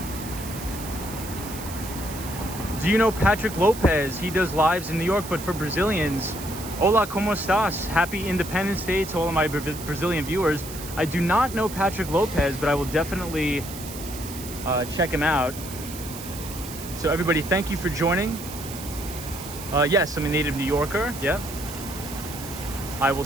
Do you know Patrick Lopez? He does lives in New York, but for Brazilians. Hola, ¿cómo estás? Happy Independence Day to all of my Brazilian viewers. I do not know Patrick Lopez, but I will definitely check him out. So everybody, thank you for joining. Yes, I'm a native New Yorker. Yep. I will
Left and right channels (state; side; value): noise; right; hiss, 12 dB below the sound